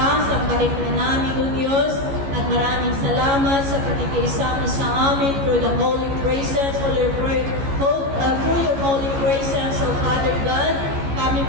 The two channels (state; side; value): late; left; 14 ms